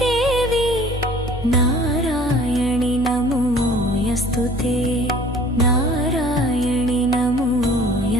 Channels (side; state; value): both; normal; correlation 0.50